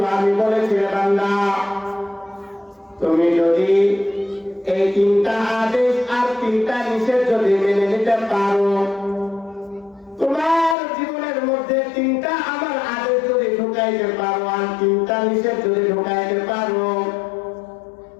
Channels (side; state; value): right; drops out; at 10.8 s